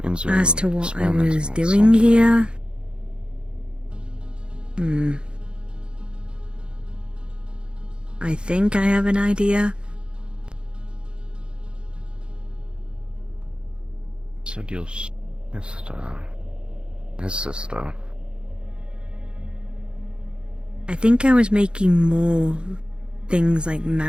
Means you're As to what I experimenting was on doing something. here, I think I have an idea. Said your sister. His sister. I think I was making more things like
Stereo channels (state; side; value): late; left; 0.053 ms